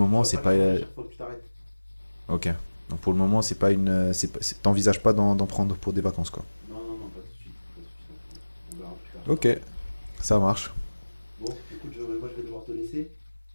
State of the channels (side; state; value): both; inverted; correlation -1.00